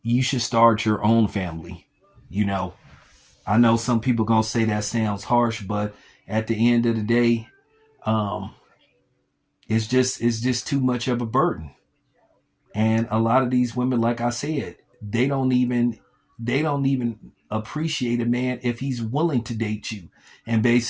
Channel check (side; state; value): both; identical; correlation 1.00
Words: you should start your own family. You know, I know some people gonna say that sounds harsh, but at the end of the day, um, it's just too much of a burden. And a lot of these women, like I said, they don't even appreciate a man if he's willing to date you and